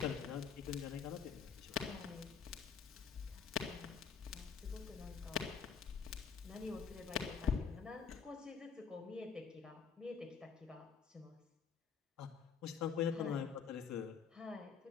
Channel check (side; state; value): right; quieter; 6.3 dB